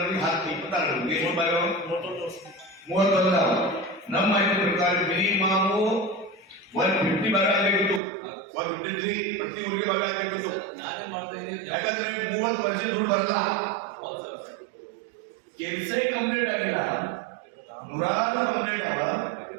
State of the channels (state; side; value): drops out; left; at 8.0 s